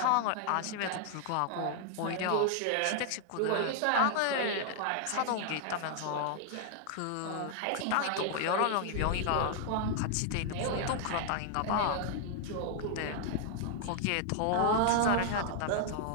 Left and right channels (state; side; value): different; both; correlation 0.00